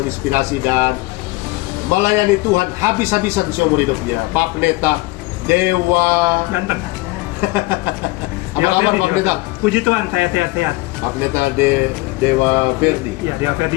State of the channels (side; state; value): right; quieter; 22.0 dB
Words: dan melayani Tuhan habis-habisan seumur hidupnya, Pak Pendeta Dewa Ganteng. Apa kabar Pak Pendeta? Puji Tuhan, saya sehat-sehat. Pak Pendeta Dewa Ferdi. Ya, Dewa